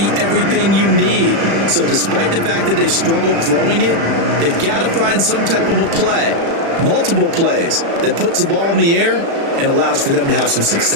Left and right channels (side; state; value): left; late; 36 ms